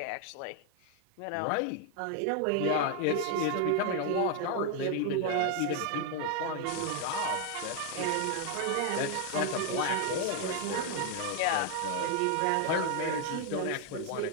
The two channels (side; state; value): both; different; correlation 0.00